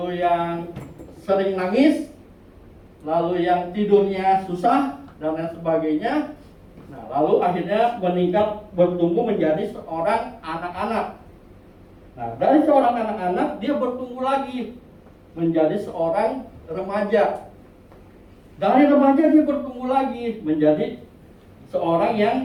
yang sering nangis, lalu yang tidurnya susah, dan lain sebagainya. Nah, lalu akhirnya meningkat, bertumbuh menjadi seorang anak-anak. Nah, dari seorang anak-anak dia bertumbuh lagi menjadi seorang remaja. Dari remaja dia bertumbuh lagi menjadi seorang yang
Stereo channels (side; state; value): both; identical; correlation 1.00